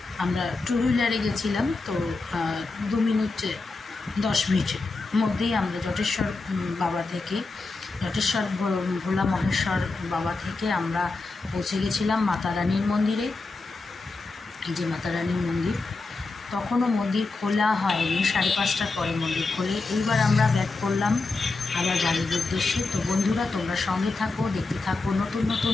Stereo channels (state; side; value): quieter; right; 3.7 dB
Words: আমরা টু হুইলারে গেছিলাম, তো 2 মিনিট 10 মিনিটের মধ্যেই আমরা জটেশ্বর ভোলা মহেশ্বর বাবা থেকে আমরা পৌঁছে গেছিলাম মাতা রানীর মন্দিরে। এই যে মাতা রানীর মন্দির, তখনও মন্দির খোলা হয়নি, 5:30টার পরে মন্দির খোলে। এইবার আমরা ব্যাক করলাম আবার বাড়ির উদ্দেশ্যে। তো বন্ধুরা, তোমরা সঙ্গে থাকো, দেখতে থাকো নতুন নতুন